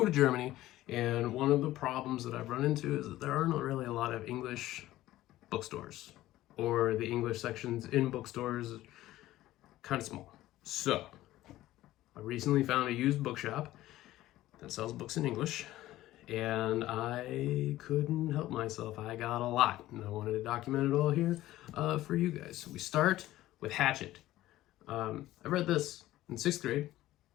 to Germany, and one of the problems that I've run into is that there aren't really a lot of English bookstores, or the English sections in bookstores kind of small. So, I recently found a used bookshop that sells books in English, and I couldn't help myself. I got a lot, and I wanted to document it all here for you guys. So we start with Hatchet. I read this in 6th grade,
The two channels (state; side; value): quieter; right; 15.4 dB